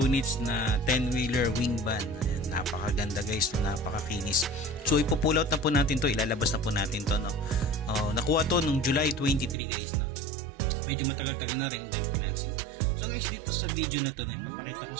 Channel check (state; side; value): drops out; left; at 9.6 s